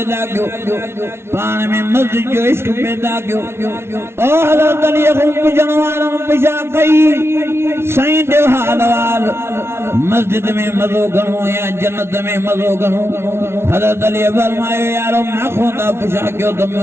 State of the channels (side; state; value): left; late; 0.12 ms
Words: क्यों पान में मस्जिद जो इश्क पैदा क्यों ओ हज़रत अली को पुछण वारनि पुछा कई साईं जो हाल वाल मस्जिद में मज़ो घणो या जन्नत में मज़ो घणो हज़रत अली फरमायो यारो मां को था पुछा क्यों तो